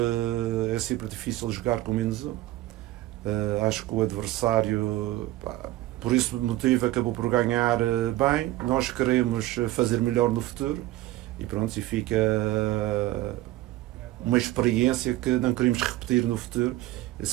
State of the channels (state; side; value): quieter; left; 16.3 dB